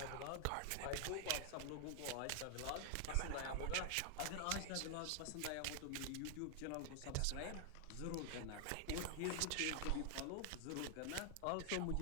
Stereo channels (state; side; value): different; both; correlation 0.00